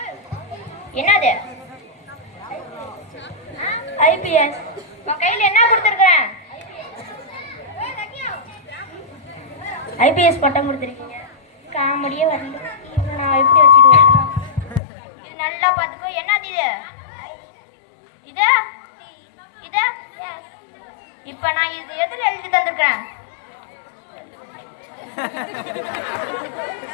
என்னது? ஐபிஎஸ். உன் கையில என்ன கொடுத்துருக்கேன்? ஐபிஎஸ் பட்டம் கொடுத்துருக்கீங்க. காமெடியே வரல. நான் எப்படி வச்சுட்டு வரணும்? இது நல்லா பார்த்துக்கோ. என்னது இது? இது இது இப்ப நான் இது எதுல எழுதி தந்திருக்கேன்?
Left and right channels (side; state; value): right; drops out; at 14.8 s